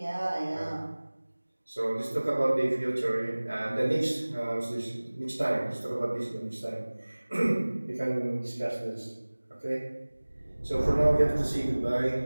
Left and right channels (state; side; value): inverted; both; correlation -1.00